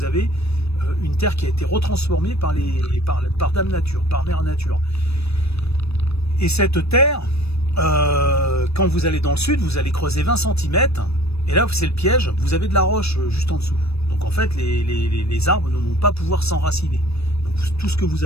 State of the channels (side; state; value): right; late; 0.78 ms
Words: avez une terre qui a été retransformée par Dame Nature, par Mère Nature. Et cette terre, quand vous allez dans le sud, vous allez creuser 20 cm, et là c'est le piège, vous avez de la roche juste en dessous. Donc en fait, les arbres ne vont pas pouvoir s'enraciner. Donc tout ce que vous